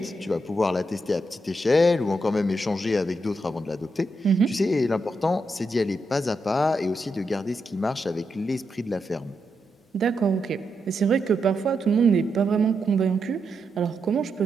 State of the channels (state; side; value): normal; both; correlation 0.83